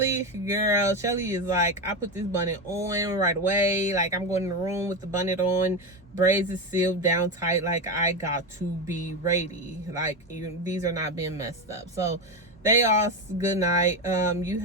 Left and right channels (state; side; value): normal; both; correlation 0.15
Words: is like, I put this bonnet on right away. Like, I'm going in the room with the bonnet on. Braids is sealed down tight. Like, I got to be ready. Like, these are not being messed up. So they all good night. You